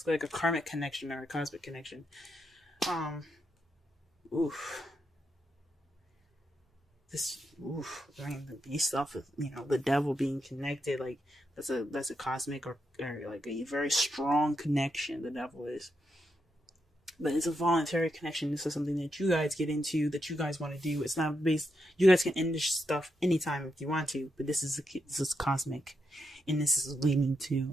like a karmic connection or a cosmic connection. Based off of the Devil being connected, like that's a cosmic or like a very strong connection. The Devil is. But it's a voluntary connection. This is something that you guys get into, that you guys want to do. It's not based. You guys can end this stuff anytime if you want to. But this is cosmic, and this is leading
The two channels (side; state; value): both; normal; correlation 0.83